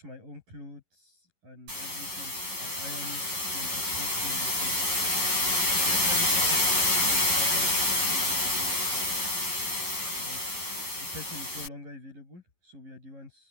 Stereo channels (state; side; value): late; left; 11 ms